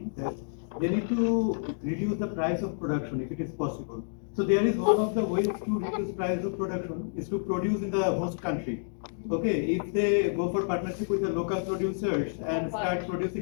that they need to reduce the price of production if it is possible. So there is one of the ways to reduce price of production is to produce in the host country. Okay, if they go for partnership with the local producers and start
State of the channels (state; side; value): silent; right; digital silence